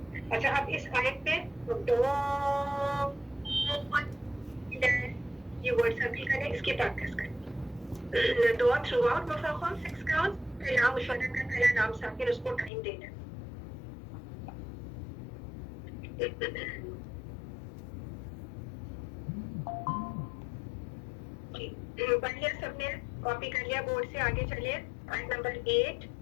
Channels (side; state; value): right; drops out; at 12.7 s